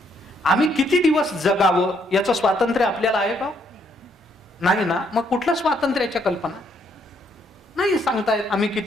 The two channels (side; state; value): both; normal; correlation 0.71